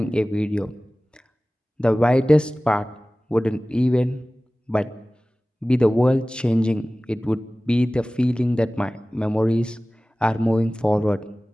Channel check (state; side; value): normal; both; correlation 0.98